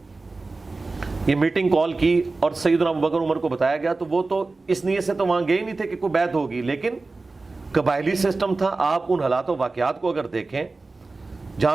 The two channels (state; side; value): quieter; left; 3.6 dB